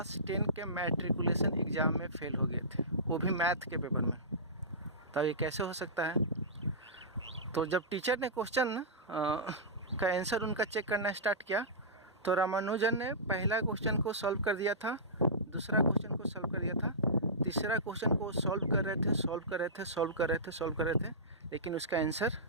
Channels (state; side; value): normal; both; correlation -0.19